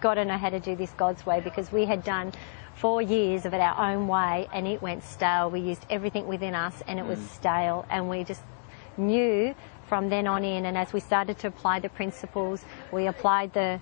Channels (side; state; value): right; silent; digital silence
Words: to know how to do this God's way, because we had done 4 years of it our own way, and it went stale. We used everything within us, and it was stale, and we just knew from then on in. And as we started to apply the principles, we applied the